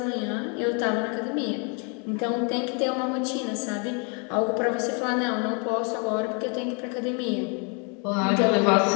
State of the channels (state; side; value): quieter; right; 35.6 dB